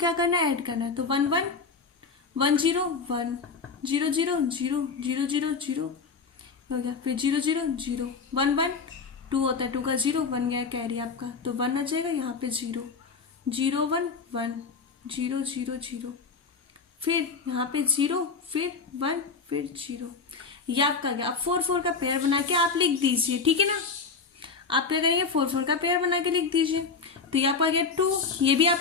करना है, ऐड करना है, तो 11 10 1 0 0 0 0 0 0 हो गया, फिर 0 0 0 1 1 2 होता है, 2 का 0 1 गया कैरी आपका, तो 1 आ जाएगा, यहाँ पे 0 0 1 1 0 0 0 फिर यहाँ पे 0 फिर 1 फिर 0, ये आपका गया। अब 4 4 का पेयर बना के आप लिख दीजिए, ठीक है ना। आप क्या करेंगे, 4 4 का पेयर बना के लिख दीजिए, तो ये आपका आ गया 2, ये भी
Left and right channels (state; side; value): quieter; right; 4.9 dB